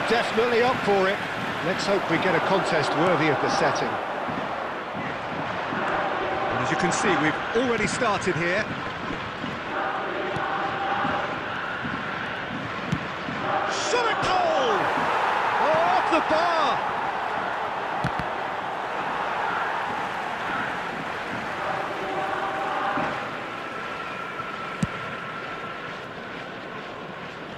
definitely up for it. Let's hope we get a contest worthy of the setting. And as you can see, we've already started here. Shot a goal! Oh, off the bar!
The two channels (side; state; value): both; identical; correlation 1.00